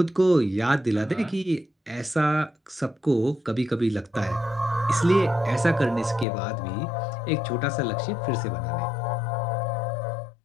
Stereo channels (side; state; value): right; drops out; at 6.2 s